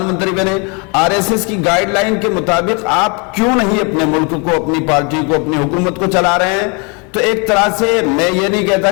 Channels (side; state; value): right; quieter; 32.8 dB